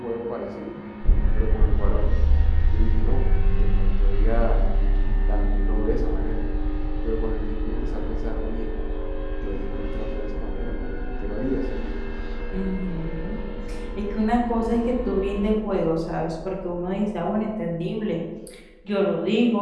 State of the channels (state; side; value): identical; both; correlation 1.00